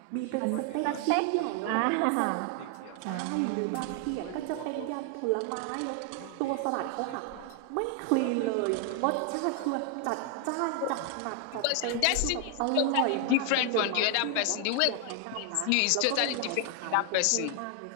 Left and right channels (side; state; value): both; different; correlation 0.00